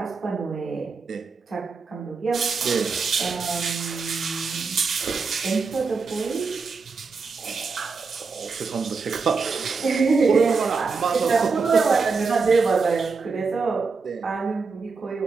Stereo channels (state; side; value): quieter; left; 4.8 dB